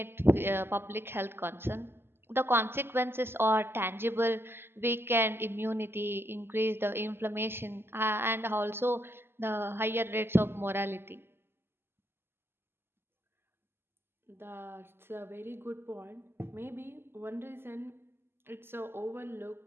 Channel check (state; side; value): late; left; 0.11 ms